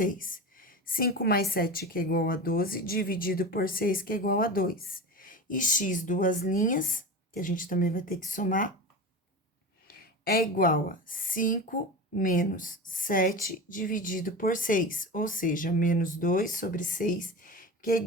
5 mais 7, que é igual a 12, dividido por 6, que é igual a 2. E x duas linhas, que a gente também vai ter que somar, é igual a 5 menos 7 dividido por 6, ou seja, menos 2 sobre 6, que é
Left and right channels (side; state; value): both; normal; correlation 0.28